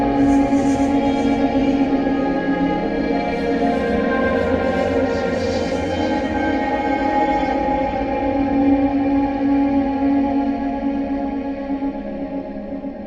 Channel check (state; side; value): identical; both; correlation 1.00